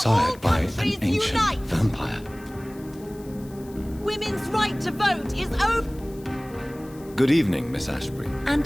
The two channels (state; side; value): noise; left; hiss, 24 dB below the sound